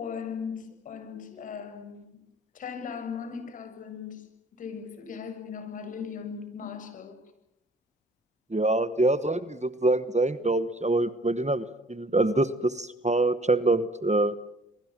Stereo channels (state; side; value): normal; both; correlation 0.55